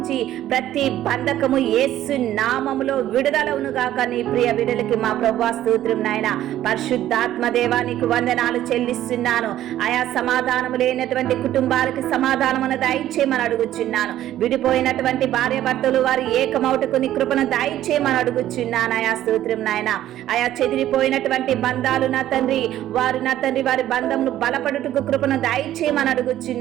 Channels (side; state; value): left; quieter; 12.8 dB